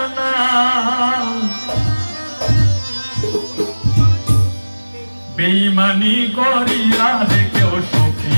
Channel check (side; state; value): both; inverted; correlation -1.00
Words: না। বেঈমানি করিয়া রে কেউ সুখী